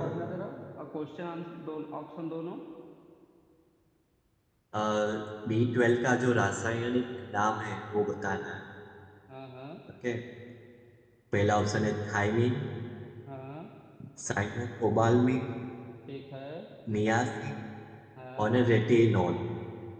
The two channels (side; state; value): both; identical; correlation 1.00